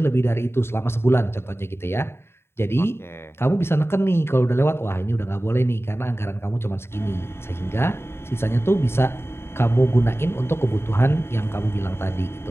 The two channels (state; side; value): late; right; 0.12 ms